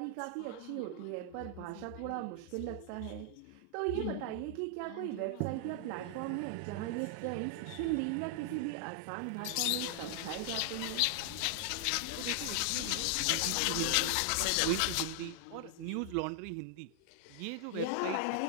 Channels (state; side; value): different; both; correlation 0.00